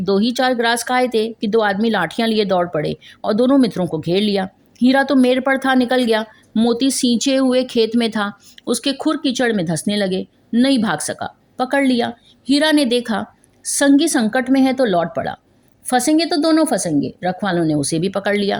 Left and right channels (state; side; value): identical; both; correlation 1.00